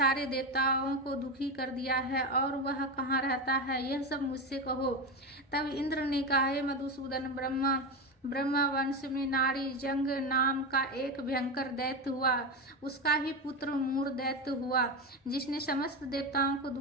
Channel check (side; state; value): both; normal; correlation 0.17